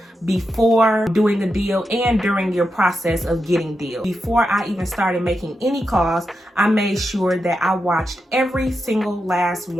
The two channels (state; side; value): normal; both; correlation 0.87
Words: before doing a deal and during your process of getting deals. Before I even started making any calls, I made sure that I watched every single last